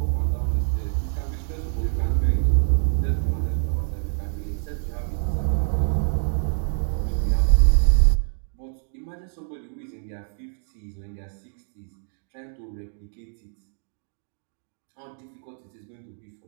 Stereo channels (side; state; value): left; silent; 61 dB below the other